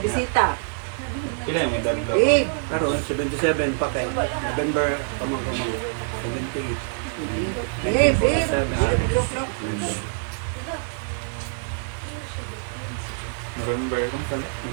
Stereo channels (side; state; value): left; silent; digital silence